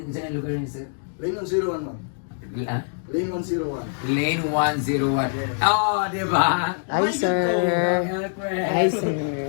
Saan ang lugar niya, sir? Lane 101 ma'am. Ah? Lane 101. Lane 101. Oh, di ba? Hi, sir. Elcrest. Hi, sir.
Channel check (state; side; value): silent; right; digital silence